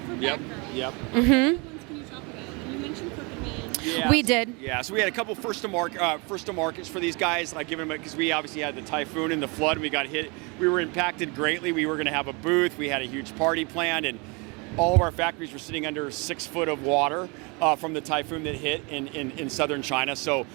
Batgirl. Yep. What ones can you talk about? And you mentioned Crooked Man. Yeah. We did. Yeah, so we had a couple first to markets for these guys. Like giving them, because we obviously had the typhoon and the flood, and we got hit. We were impacted greatly. We were going to have a booth. We had a huge party planned, and all of our factories were sitting under 6 foot of water from the typhoon that hit in southern China. So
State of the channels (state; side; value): quieter; left; 30.0 dB